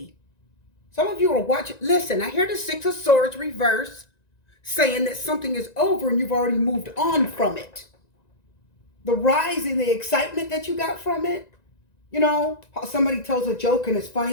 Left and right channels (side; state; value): right; late; 1.9 ms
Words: Some of you are watching. Listen, I hear the Six of Swords reverse saying that something is over and you've already moved on from it. The rise in the excitement that you got from it. You know, how somebody tells a joke and it's